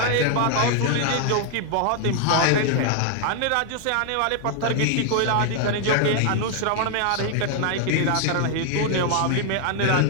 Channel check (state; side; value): different; both; correlation 0.00